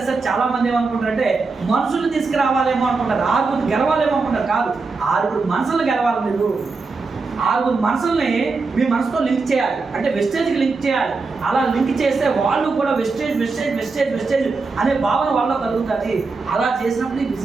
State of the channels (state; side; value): quieter; left; 4.2 dB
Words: సార్ చాలా మంది ఏమనుకుంటారంటే మనుషులు తీసుకురావాలేమో అనుకుంటారు, 6 గెలవాలేమో అనుకుంటారు. కాదు, 6 మనసులు గెలవాలి. మీరు 6 మనసుల్ని మీ మనసుతో లింక్ చేయాలి, అంటే వెస్టేజ్కి లింక్ చేయాలి. అలా లింక్ చేస్తే వాళ్ళు కూడా వెస్టేజ్ వెస్టేజ్ వెస్టేజ్ వెస్టేజ్ అనే భావన వాళ్ళలో కలుగుతుంది. అలా చేసినప్పుడు ఈ